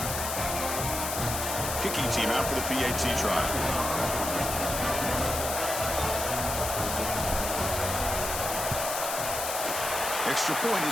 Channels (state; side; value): noise; left; hiss, 3 dB below the sound